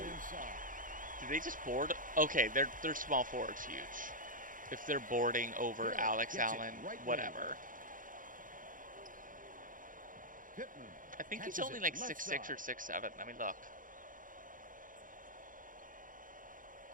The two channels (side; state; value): left; late; 0.39 ms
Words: inside. Did they just board? Okay, their small forward's huge. If they're boarding over Hill Alex gets it Allen, right wing. whatever. Pittman I think he's catches only it like left 6'6" or side. 6'7". Let me look.